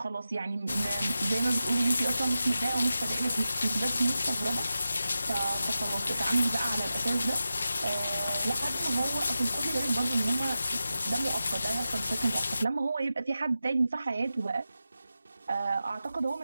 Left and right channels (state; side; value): inverted; both; correlation -0.92